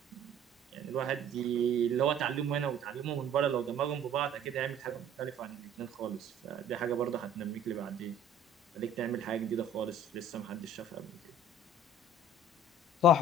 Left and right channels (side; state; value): both; normal; correlation 0.50